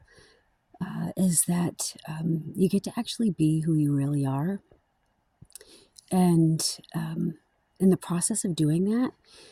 is that you get to actually be who you really are. And in the process of doing that,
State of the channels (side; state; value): both; identical; correlation 1.00